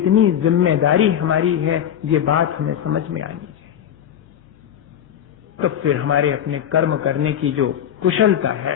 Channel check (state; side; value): quieter; right; 9.8 dB